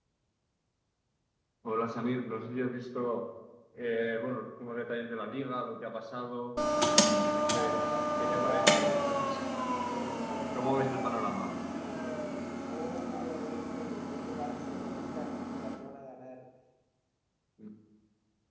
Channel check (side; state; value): both; identical; correlation 1.00